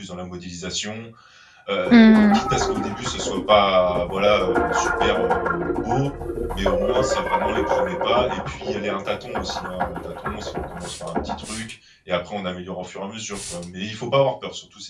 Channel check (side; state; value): both; identical; correlation 1.00